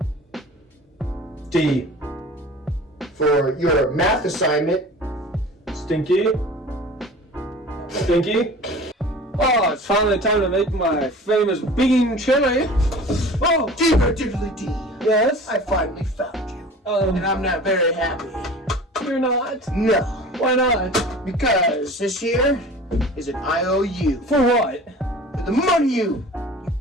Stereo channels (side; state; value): both; normal; correlation 0.41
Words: D. For your math assignment. Stinky. Stinky. Oh, it's finally time to make my famous bean chili. Oh, Digger diddly dee. yes. I finally found you. And I'm not very happy. You're not. No. Why not? Because this here is an IOU. For what? For the money you